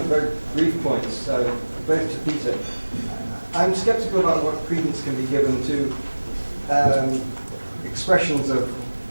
of very brief points, both to Peter. I'm sceptical about what credence can be given to expressions of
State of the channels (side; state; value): both; inverted; correlation -1.00